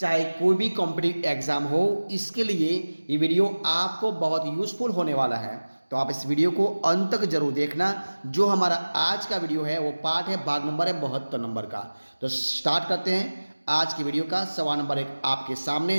कोई भी कॉम्पिटिटिव एग्जाम हो, इसके लिए ये वीडियो आपको बहुत यूजफुल होने वाला है। तो आप इस वीडियो को अंत तक जरूर देखना। जो हमारा आज का वीडियो है वो पार्ट है, भाग नंबर है 72 नंबर का। तो स्टार्ट करते हैं आज की वीडियो का। सवाल नंबर 1 आपके सामने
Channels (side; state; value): both; inverted; correlation -1.00